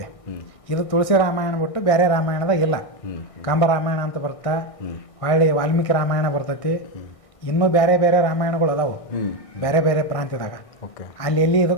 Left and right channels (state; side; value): late; right; 1.6 ms